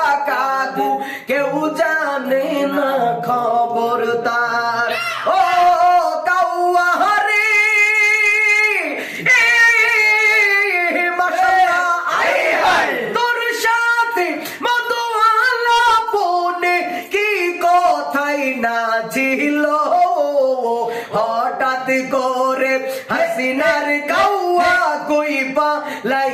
কাকু কেউ জানে না খবর তার ও কাউয়া হরি তোর সাথে মধুয়ালা পনে কি কথাই না ছিল হঠাৎ করে হাসিনার কাউয়া কইবা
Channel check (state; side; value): identical; both; correlation 1.00